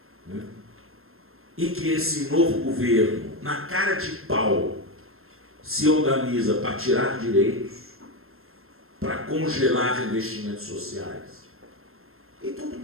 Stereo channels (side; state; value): left; late; 0.61 ms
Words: né? E que esse novo governo, na cara de pau, se organiza para tirar direitos, para congelar investimentos sociais. E todo